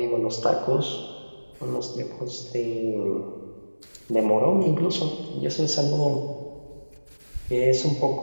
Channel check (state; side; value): inverted; both; correlation -1.00